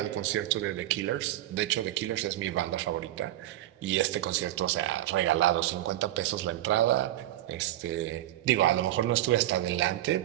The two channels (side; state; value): left; quieter; 14.4 dB